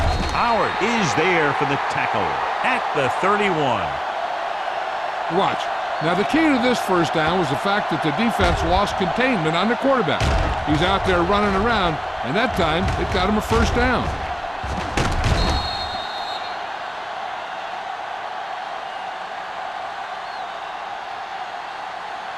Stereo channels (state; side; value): identical; both; correlation 1.00